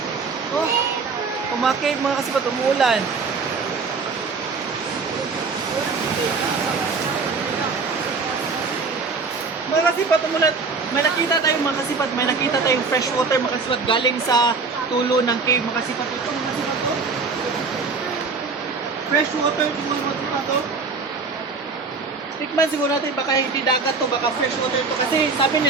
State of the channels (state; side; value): quieter; left; 4.5 dB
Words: Oh, mga cave mga kasipat, umuulan. Mga kasipat, umulan. May nakita tayong mga kasipat, may nakita tayong fresh water mga kasipat galing sa tulo ng cave mga kasipat. Ito mga kasipat to. Fresh water ito mga kasipat to. Tikman siguro natin, baka hindi dagat to, baka fresh water to. Kasi sabi